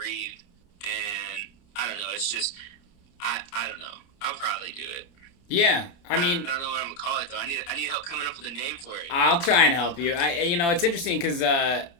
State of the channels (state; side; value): late; right; 29 ms